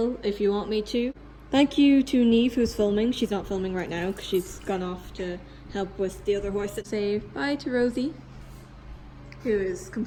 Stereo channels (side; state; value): both; identical; correlation 1.00